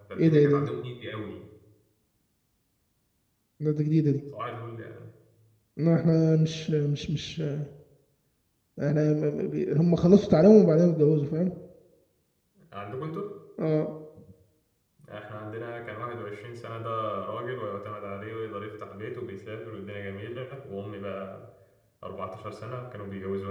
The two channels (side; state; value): both; identical; correlation 1.00